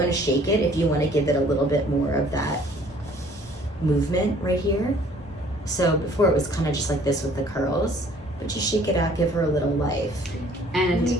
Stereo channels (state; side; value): normal; both; correlation 0.56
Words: to shake it if you want to give it a little bit more of that movement right here. So before it was kind of just like this with the curls, but you shake it out, give her a little life. And there you